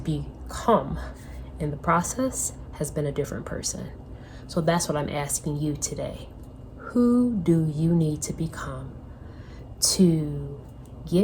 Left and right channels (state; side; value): identical; both; correlation 1.00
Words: in the process has been a different person. So that's what I'm asking you today. Who do you need to become to